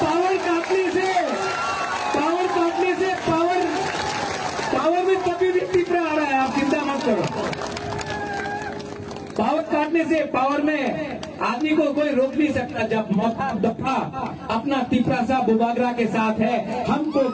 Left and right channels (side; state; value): both; identical; correlation 1.00